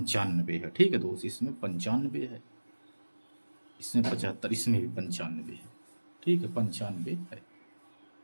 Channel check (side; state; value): both; inverted; correlation -1.00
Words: है। ठीक है दोस्त, इसमें 95 है, इसमें 75, इसमें भी 95 है। ठीक है, 95 है।